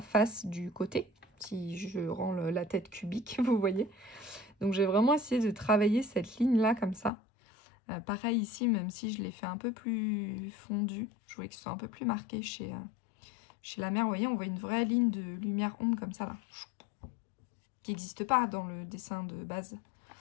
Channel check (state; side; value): drops out; right; at 7.1 s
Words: face du côté, si je rends la tête cubique, vous voyez. Donc j'ai vraiment essayé de travailler cette ligne là comme ça. Pareil ici, même si je l'ai fait un peu plus fondu, je voulais que ce soit un peu plus marqué chez la mère. Vous voyez, on voit une vraie ligne de lumière-ombre comme ça là, qui n'existe pas dans le dessin de base.